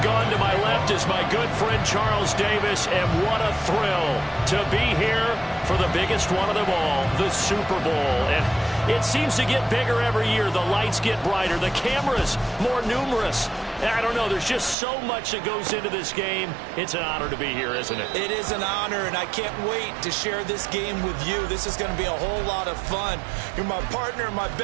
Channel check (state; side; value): drops out; left; at 14.8 s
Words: Gaughan. To my left is my good friend Charles Davis, and what a thrill to be here for the biggest one of them all, the Super Bowl. And it seems to get bigger every year. The lights get brighter, the cameras more numerous. I don't know, there's just so much that goes into this game. It's an honor to be here, isn't it? It is an honor, and I can't wait to share this game with you. This is going to be a whole lot of fun. You're my partner, my